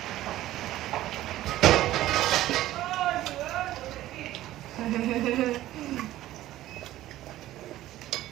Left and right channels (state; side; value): quieter; left; 14.8 dB